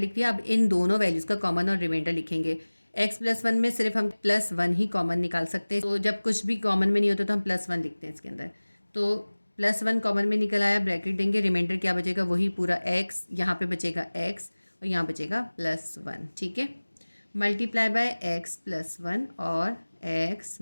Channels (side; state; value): both; inverted; correlation -1.00